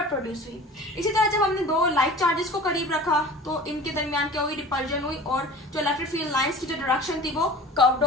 प्रोड्यूस हुई। इसी तरह जब हमने दो लाइक चार्जेस को करीब रखा तो इनके दरमियान क्या हुई, रिपल्जन हुई और जो इलेक्ट्रिक फील्ड लाइंस की जो डायरेक्शन थी वो कर्व्ड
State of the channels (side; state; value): both; normal; correlation 0.40